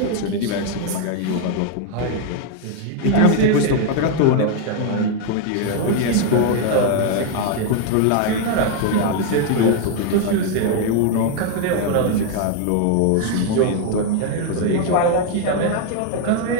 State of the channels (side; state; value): both; different; correlation 0.00